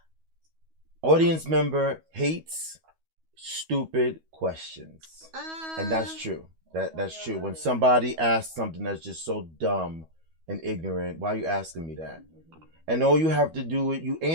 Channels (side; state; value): left; late; 12 ms